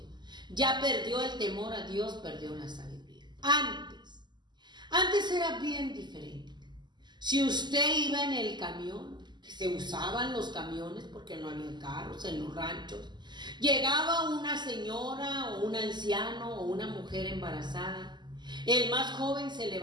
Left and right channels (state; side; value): late; left; 0.21 ms